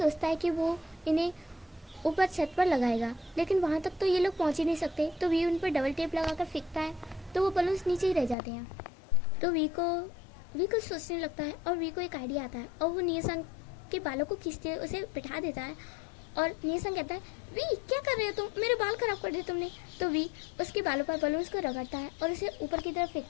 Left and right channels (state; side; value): drops out; right; at 8.3 s